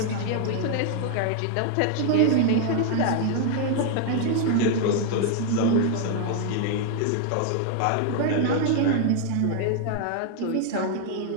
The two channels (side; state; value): both; different; correlation 0.00